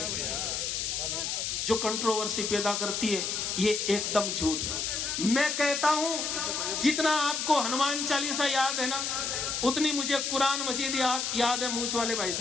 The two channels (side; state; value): left; noise; hiss, 1 dB below the sound